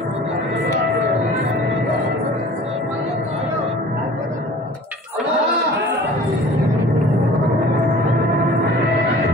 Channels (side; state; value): both; normal; correlation 0.45